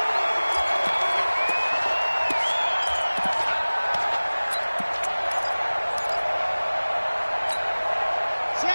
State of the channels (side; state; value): both; inverted; correlation -1.00